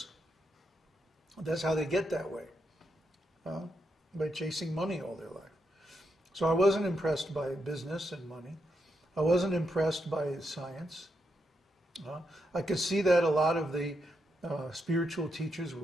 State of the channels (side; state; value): both; normal; correlation 0.82